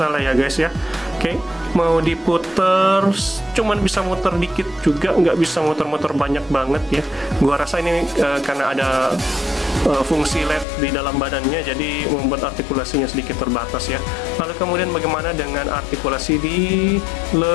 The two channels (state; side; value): drops out; right; at 10.7 s